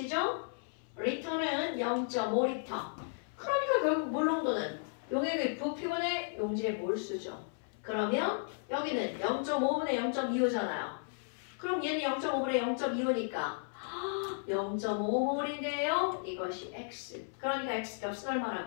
리터는 0.5리터. 그러니까 결국 몰 농도는 용액의 부피분의 용질의 몰수죠. 그러면 여기는 0.5분의 0.25잖아요. 그럼 얘는 0.5분의 0.25니까 0.5몰인데요. 이것이 x. 그러니까 x 값은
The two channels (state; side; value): silent; right; 55 dB below the other